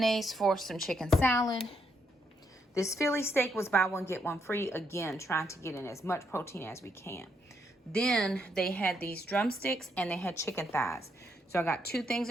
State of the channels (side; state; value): both; normal; correlation 0.77